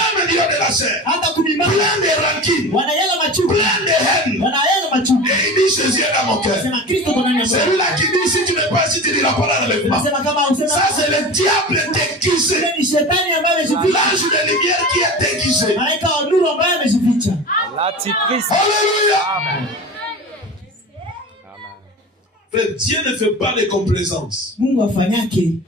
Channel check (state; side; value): normal; both; correlation 0.32